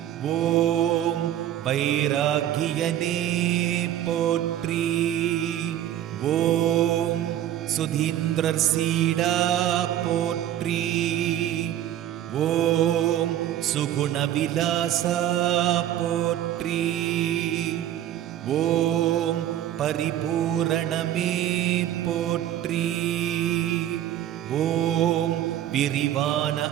ஓம் வைராகியனே போற்றி. ஓம் சுதீந்திரசீடா போற்றி. ஓம் சுகுணவிலாசா போற்றி. ஓம் பரிபூரணமே போற்றி. ஓம் விரிவான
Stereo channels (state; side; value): quieter; left; 11.9 dB